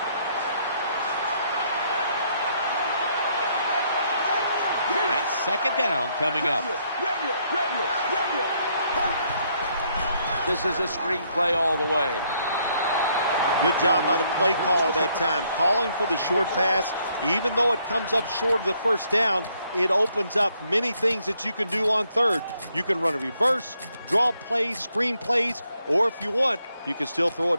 That's 2nd down coming up. This is a screen play all the way. Good job by the play caller that time, calling for the short pass. Even though it comes up short of the 1st down, it opens up many things that you can do on 3rd. You can run a reverse, draw plays, screen plays, or if you want, you can still throw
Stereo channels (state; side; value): inverted; both; correlation -0.71